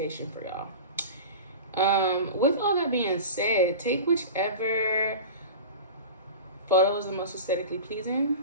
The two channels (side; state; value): both; inverted; correlation -0.31